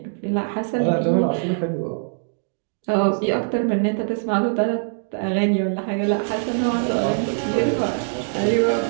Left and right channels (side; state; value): left; silent; digital silence